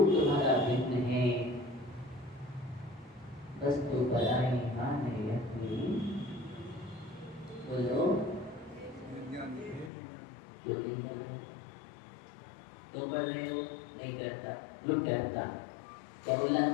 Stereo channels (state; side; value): drops out; right; at 9.9 s